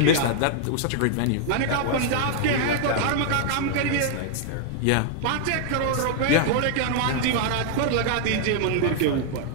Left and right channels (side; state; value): both; different; correlation 0.00